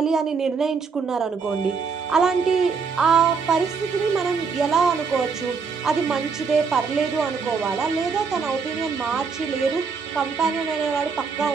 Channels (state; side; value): quieter; left; 5.3 dB